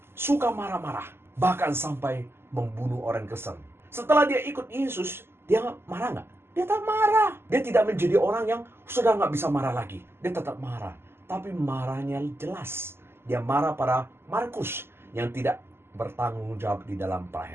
suka marah-marah, bahkan sampai membunuh orang Kristen. Setelah dia ikut Yesus, dia marah nggak? Dia tetap marah. Dia tidak menjadi orang yang sudah nggak bisa marah lagi. Dia tetap marah, tapi marahnya jelas. Dia marah pada Markus yang tidak bertanggung jawab di dalam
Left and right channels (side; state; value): left; late; 0.12 ms